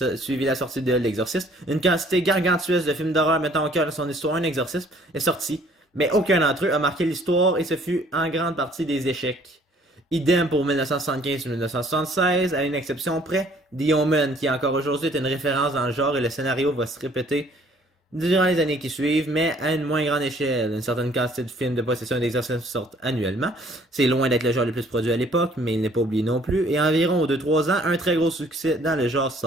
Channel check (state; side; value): normal; both; correlation 0.58